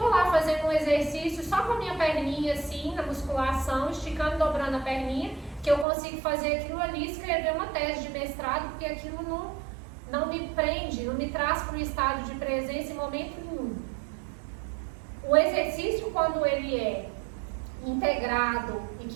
lá fazendo um exercício só com a minha perninha assim, na musculação, esticando, dobrando a perninha, que eu consigo fazer aquilo ali, escrever uma tese de mestrado, porque aquilo não me prende, não me traz para um estado de presença em momento nenhum. O exercício, quando ele é integrado e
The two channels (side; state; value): left; drops out; at 5.9 s